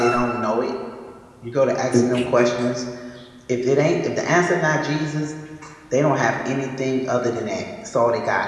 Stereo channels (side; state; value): both; identical; correlation 1.00